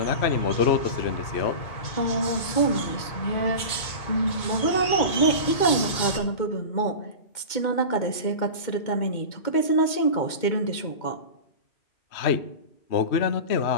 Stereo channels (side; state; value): right; late; 2.2 ms